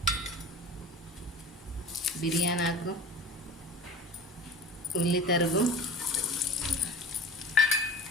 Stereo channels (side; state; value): both; normal; correlation 0.37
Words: బిర్యానీ ఆకు, ఉల్లి తరుగు,